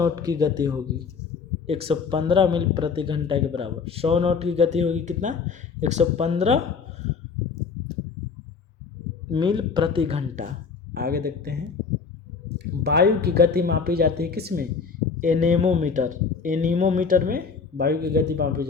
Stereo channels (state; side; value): quieter; right; 5.4 dB